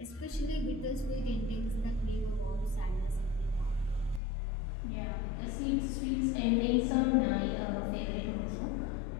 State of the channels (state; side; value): drops out; right; at 4.2 s